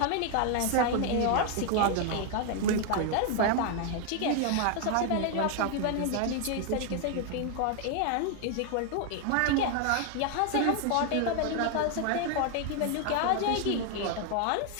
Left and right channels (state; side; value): different; both; correlation 0.01